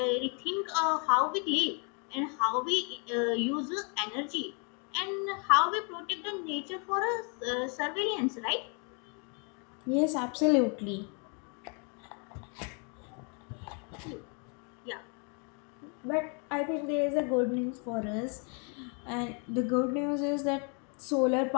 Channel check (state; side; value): quieter; right; 37.3 dB